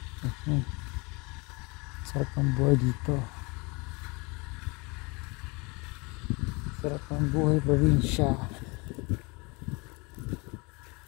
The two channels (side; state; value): right; quieter; 28.0 dB